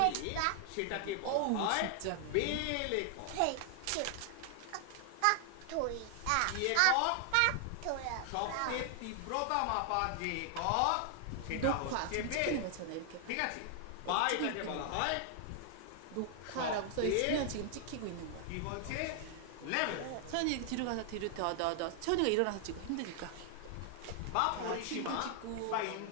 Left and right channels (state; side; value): different; both; correlation 0.00